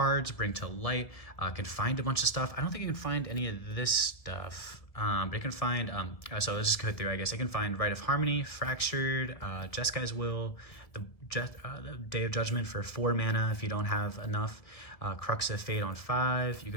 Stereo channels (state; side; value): late; right; 1.6 ms